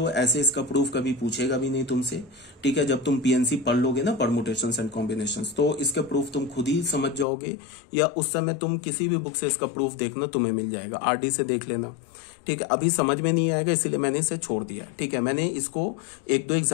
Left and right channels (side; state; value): right; drops out; at 7.2 s